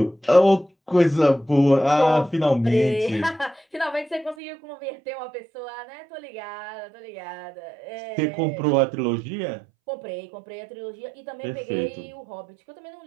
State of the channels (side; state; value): left; drops out; at 4.4 s